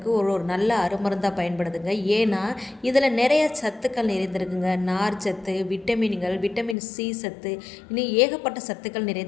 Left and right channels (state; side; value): drops out; right; at 6.8 s